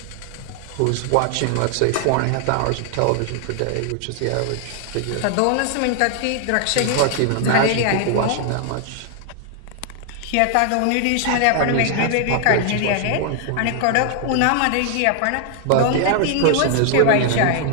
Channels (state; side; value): different; both; correlation 0.00